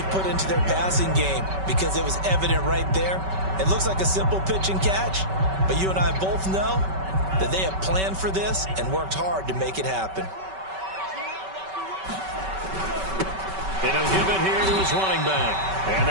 put into their passing game because it was evident right there. It looks like a simple pitch and catch, but you and I both know that they have planned for this and worked hard to make it happen. And he'll give it here to his running back. And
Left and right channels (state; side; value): late; left; 5.2 ms